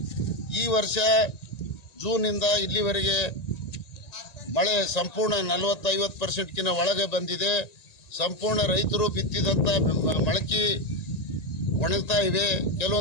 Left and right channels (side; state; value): right; late; 1.9 ms